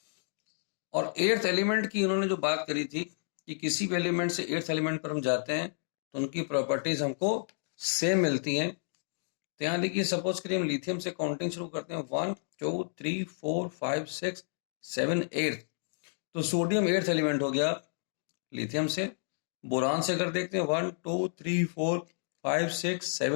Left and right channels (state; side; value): silent; right; digital silence